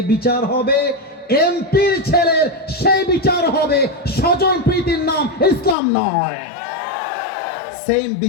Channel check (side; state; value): right; drops out; at 5.8 s